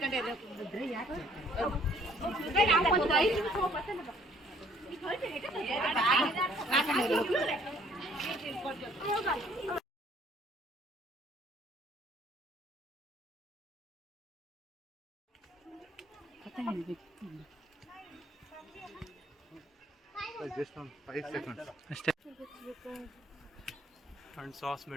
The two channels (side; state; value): both; normal; correlation 0.61